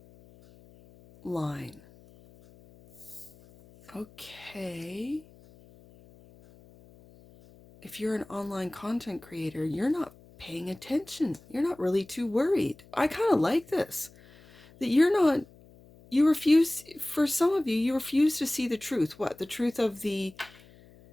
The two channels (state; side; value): noise; left; hum, 25 dB below the sound